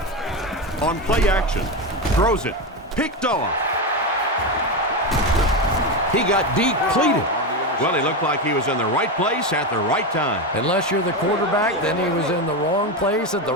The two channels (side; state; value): both; normal; correlation 0.14